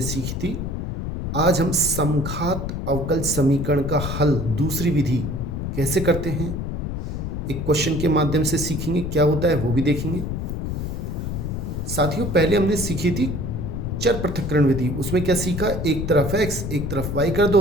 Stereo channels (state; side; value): noise; left; rumble, 4 dB below the sound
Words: सीखी थी। आज हम समघात अवकल समीकरण का हल दूसरी विधि कैसे करते हैं, एक क्वेश्चन के माध्यम से सीखेंगे। क्या होता है वो भी देखेंगे। साथियों, पहले हमने सीखी थी चर पृथक्करण विधि। उसमें क्या सीखा, एक तरफ x एक तरफ y कर